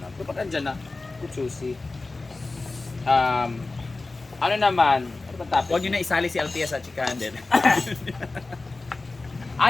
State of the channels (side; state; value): right; quieter; 3.4 dB